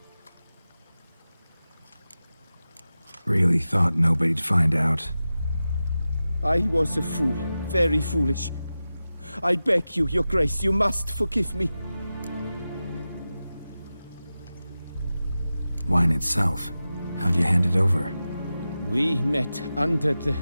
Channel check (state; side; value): inverted; both; correlation -0.94